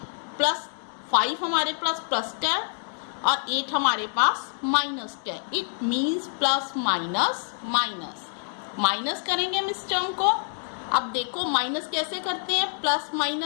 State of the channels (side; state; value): right; silent; digital silence